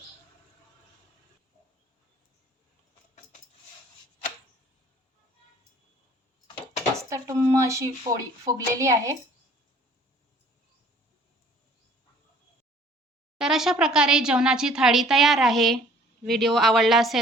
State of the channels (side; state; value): both; normal; correlation 0.55